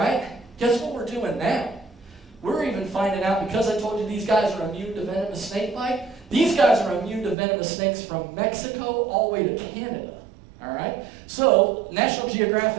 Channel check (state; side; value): drops out; left; at 7.4 s